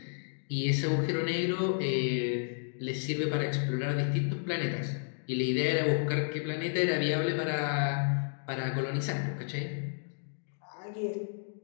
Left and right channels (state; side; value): silent; right; digital silence